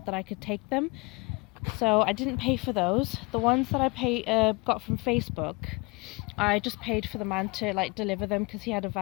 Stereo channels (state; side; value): quieter; right; 27.0 dB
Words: that I could take them. So I didn't pay for those. The ones that I got from Facebook, I just paid for the man to deliver them because he had a